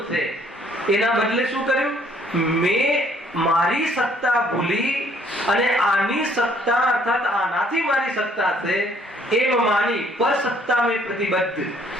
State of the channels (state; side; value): normal; both; correlation 0.63